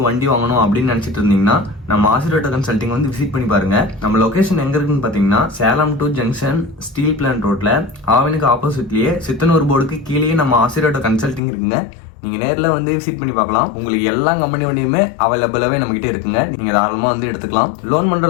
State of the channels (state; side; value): drops out; right; at 11.4 s